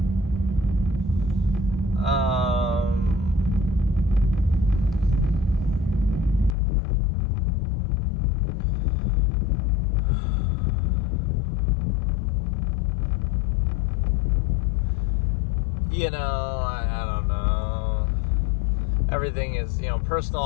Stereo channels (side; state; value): right; drops out; at 6.6 s